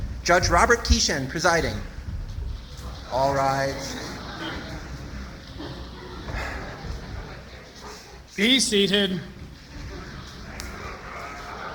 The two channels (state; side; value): identical; both; correlation 1.00